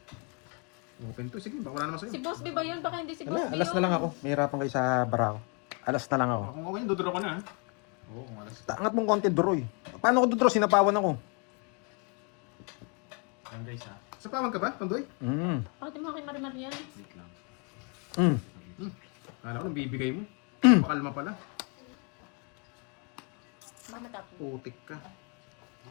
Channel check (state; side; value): quieter; right; 35.6 dB